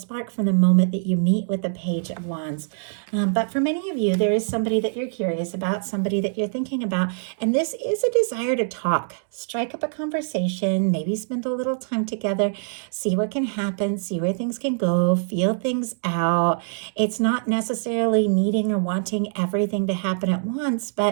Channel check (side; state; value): left; silent; digital silence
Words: from the moment that you meet with the Page of Wands. But for many of you, there is somebody that you're curious about, somebody that you're thinking about, and this is a desire to talk, strike up a conversation, maybe spend a little time together, see what can happen, see where things can go, feel things out. It's not necessarily needing or wanting everything to happen at once,